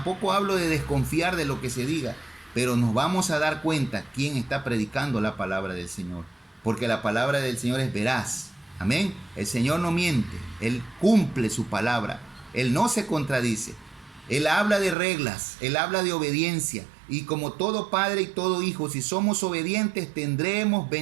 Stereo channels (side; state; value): left; drops out; at 15.0 s